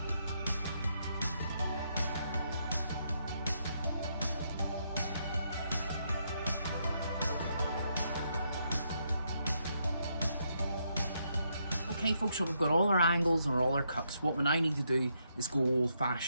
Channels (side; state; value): both; inverted; correlation -0.78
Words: Okay folks, so we've got all our angles and all our cuts. What we now need to do is go old